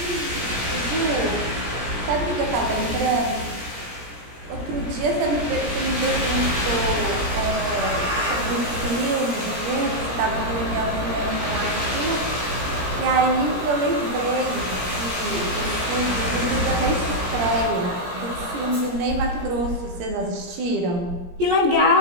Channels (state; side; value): late; left; 17 ms